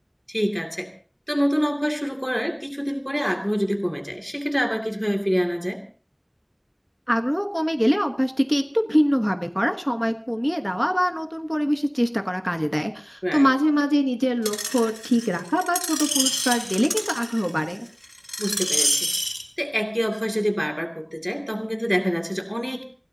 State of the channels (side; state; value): both; identical; correlation 1.00